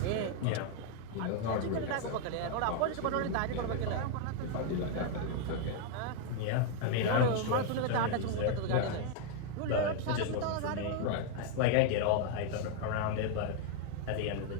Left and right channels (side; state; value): both; different; correlation 0.00